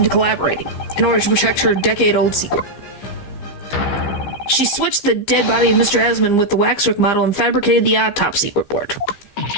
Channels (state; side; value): late; right; 15 ms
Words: collaborating in order to protect her decade-old secret. She switched the dead body of Mr. Esmond with the waxwork model and fabricated the autopsy report.